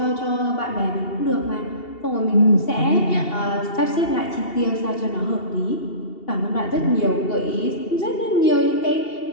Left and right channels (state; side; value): late; right; 2.7 ms